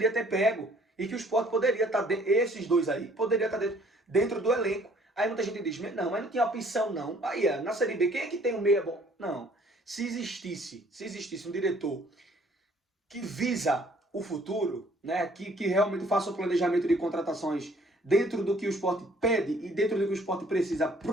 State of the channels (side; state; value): both; normal; correlation 0.59